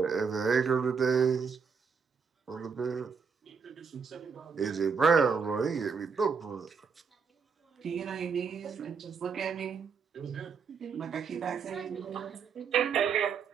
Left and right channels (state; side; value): quieter; left; 5.9 dB